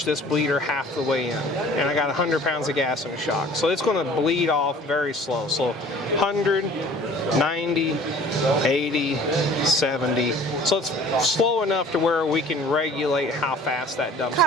this bleeder half the way in, and I got 100 pounds of gas in the shock. So it's going to bleed off very slow. So 100, 90, 80, 70. So it's slow enough to where we can regulate how fast that dumps out.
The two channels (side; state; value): both; normal; correlation 0.49